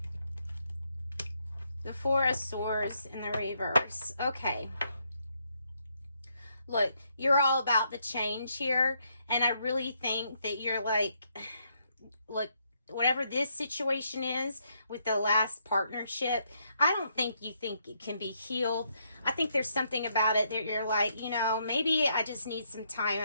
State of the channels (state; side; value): inverted; both; correlation -0.76